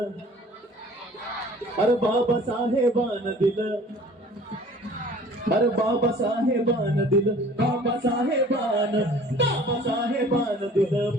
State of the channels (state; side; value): normal; both; correlation 0.49